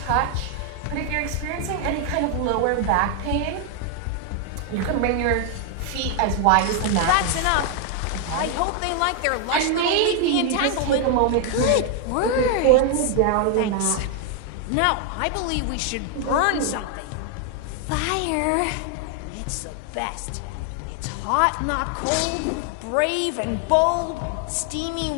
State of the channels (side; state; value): both; different; correlation 0.00